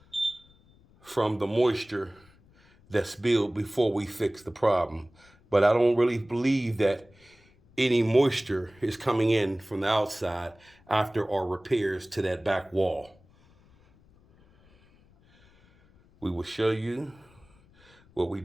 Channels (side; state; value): left; noise; rumble, 29 dB below the sound